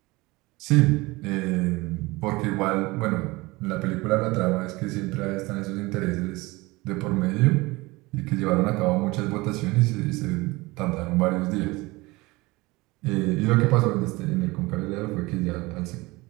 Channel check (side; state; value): left; quieter; 22.3 dB